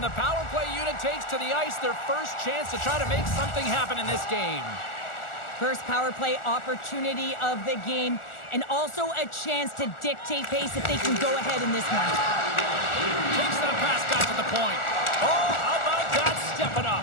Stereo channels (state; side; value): late; right; 1.4 ms